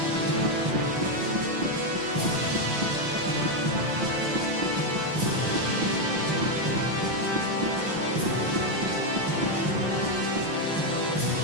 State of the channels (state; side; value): late; left; 5.8 ms